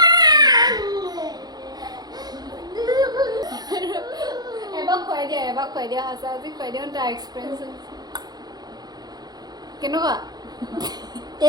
এবাৰ খুৱাই দিয়া সঁচা আজি খুৱাই দিয়া তাৰ এক্সপিৰিয়েঞ্চ কেনেকুৱা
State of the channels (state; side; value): late; left; 0.19 ms